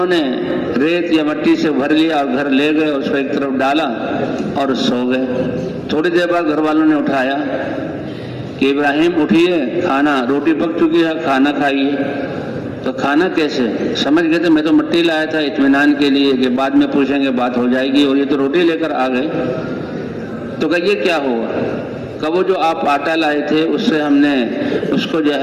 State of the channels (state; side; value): identical; both; correlation 1.00